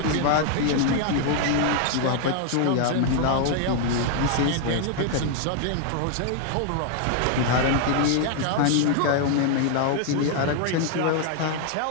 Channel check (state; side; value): different; both; correlation 0.00